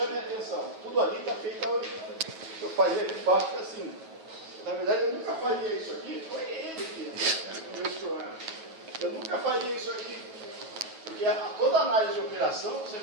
a atenção. Tudo ali está feito. Eu faria de baixo para cima. Na verdade, eu nunca faria isso aqui. Foi ele que resolveu esse problema. Eu nunca faria isso aqui. Porque toda análise de operação você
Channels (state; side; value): late; left; 9.3 ms